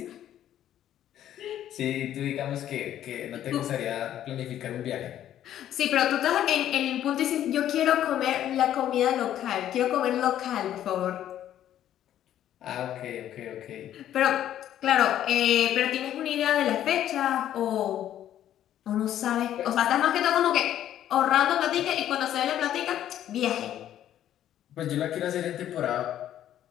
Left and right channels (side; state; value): right; quieter; 11.5 dB